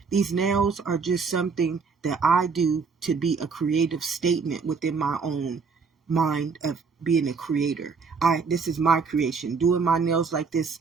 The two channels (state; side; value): quieter; left; 5.1 dB